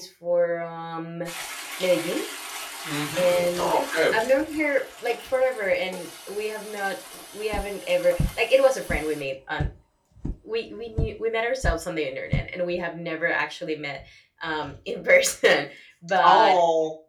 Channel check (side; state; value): both; identical; correlation 1.00